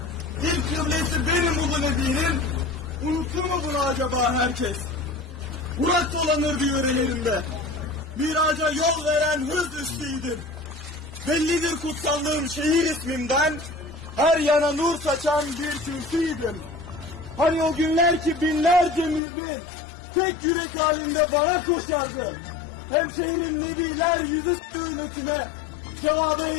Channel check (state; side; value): drops out; right; at 19.2 s